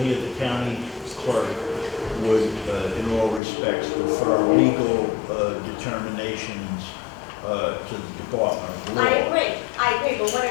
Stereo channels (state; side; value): drops out; right; at 3.4 s